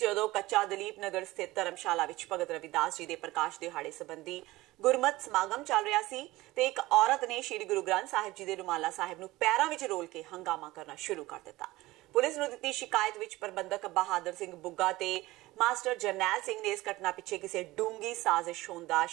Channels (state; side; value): quieter; left; 18.9 dB